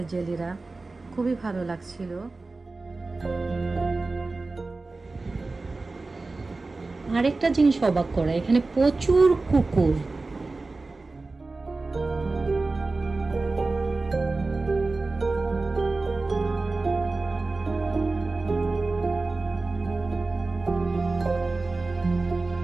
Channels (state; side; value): quieter; left; 3.5 dB